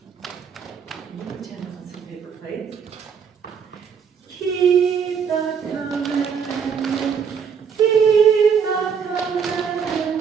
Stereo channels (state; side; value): quieter; left; 6.8 dB